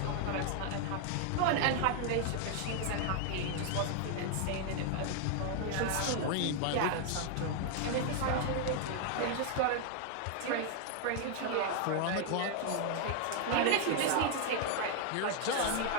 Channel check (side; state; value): both; different; correlation 0.00